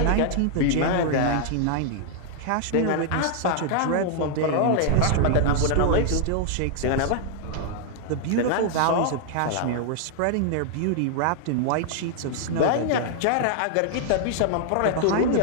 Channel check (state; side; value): different; both; correlation 0.00